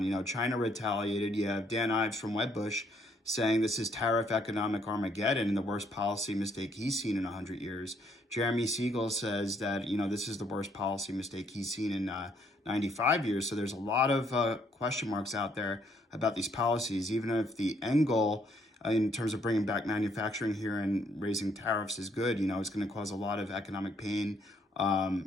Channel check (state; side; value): normal; both; correlation 0.69